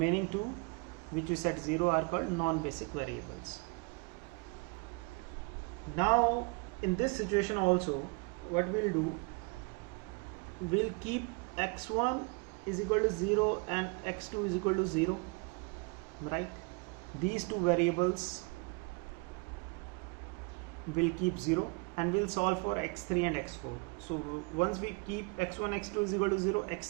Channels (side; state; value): left; quieter; 31.9 dB